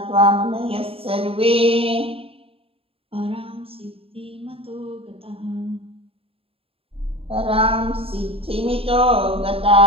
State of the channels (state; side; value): late; left; 0.27 ms